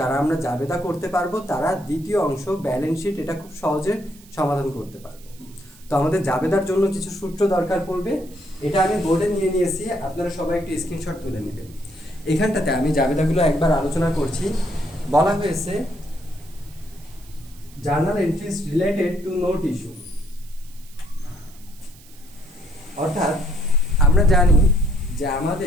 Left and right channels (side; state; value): right; noise; hiss, 24 dB below the sound